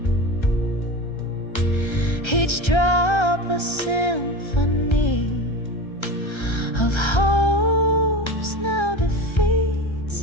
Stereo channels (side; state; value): right; late; 1.3 ms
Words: each drop a symphony of hopes now